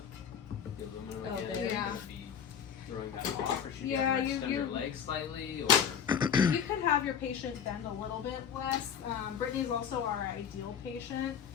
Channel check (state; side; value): quieter; right; 7.9 dB